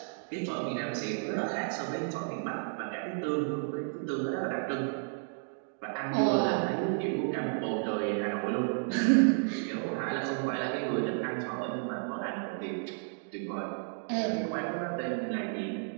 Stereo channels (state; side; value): silent; left; 56 dB below the other